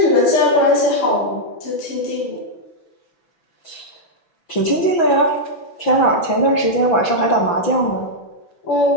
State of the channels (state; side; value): late; right; 6.0 ms